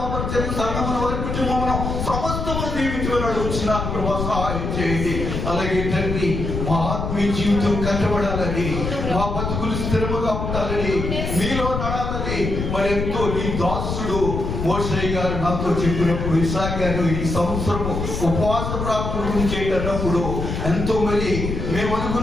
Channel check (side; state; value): left; noise; rumble, 3 dB below the sound